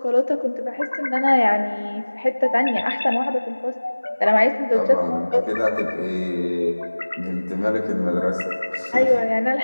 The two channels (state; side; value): inverted; both; correlation -1.00